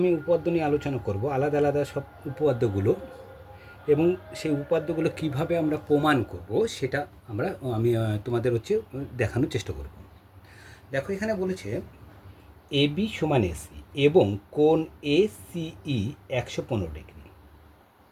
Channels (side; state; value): both; identical; correlation 1.00